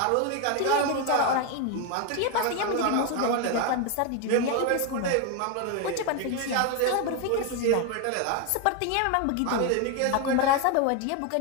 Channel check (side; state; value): both; different; correlation 0.01